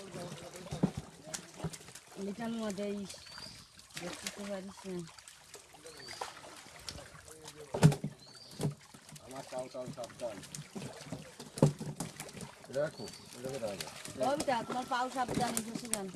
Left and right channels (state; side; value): identical; both; correlation 1.00